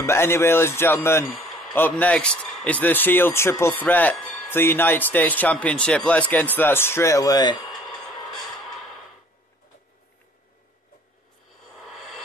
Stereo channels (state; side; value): normal; both; correlation 0.54